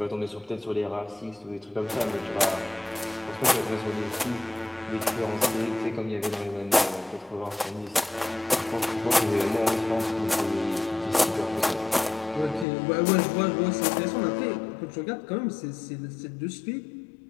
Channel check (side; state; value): right; drops out; at 12.7 s